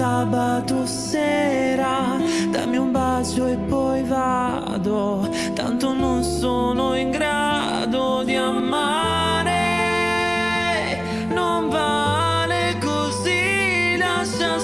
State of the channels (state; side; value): noise; right; rumble, 20 dB below the sound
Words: sera. Dammi un bacio e poi vado, tanto non sono in grado di amare. Non vale così, lascia